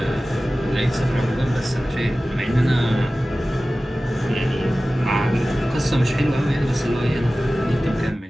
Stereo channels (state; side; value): normal; both; correlation 0.96